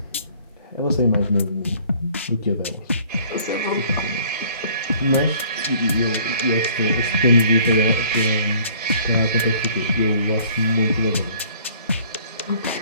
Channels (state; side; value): inverted; both; correlation -0.55